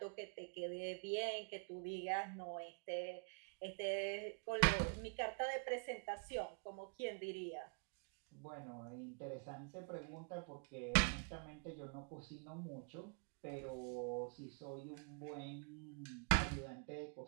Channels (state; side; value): quieter; left; 38.0 dB